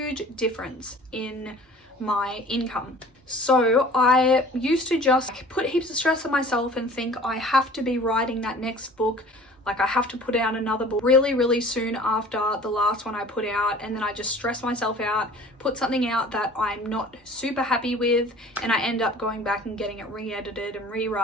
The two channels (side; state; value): both; normal; correlation 0.46